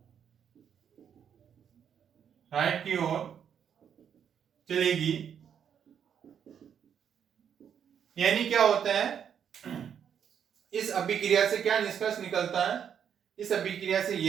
चलेगी। यानी क्या होता है, इस अभिक्रिया से क्या निष्कर्ष निकलता है, इस अभिक्रिया से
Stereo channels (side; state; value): left; quieter; 8.2 dB